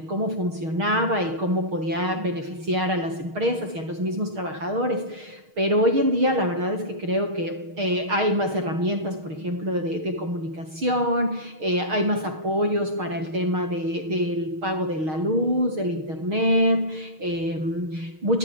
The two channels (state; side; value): late; left; 6.4 ms